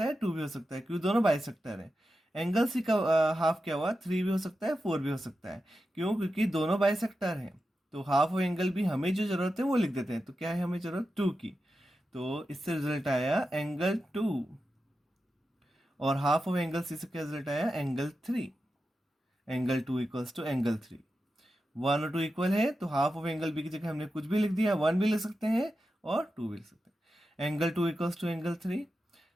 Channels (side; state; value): both; normal; correlation 0.90